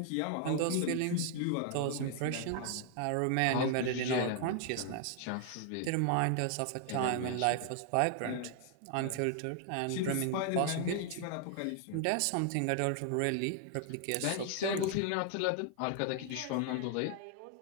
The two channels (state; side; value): different; both; correlation 0.00